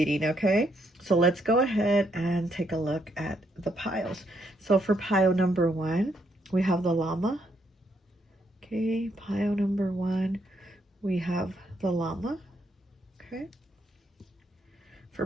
okay? So let's go ahead and take a look at the piles. So for pile number 1, we have the Llama. Okay, pile number 1, we have the Llama. Okay. For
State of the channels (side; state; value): both; normal; correlation 0.75